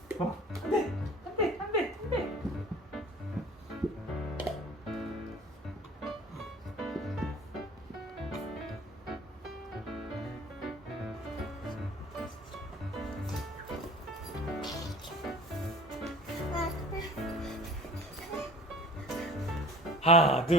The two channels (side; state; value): both; normal; correlation 0.44